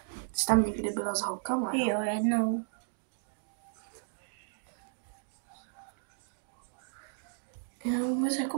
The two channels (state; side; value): silent; left; digital silence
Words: Jsi tam někdy byla s holkama? Jo, jednou. Já vůbec